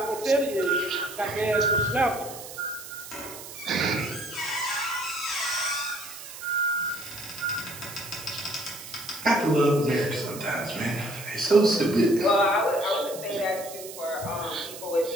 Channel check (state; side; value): noise; right; hiss, 13 dB below the sound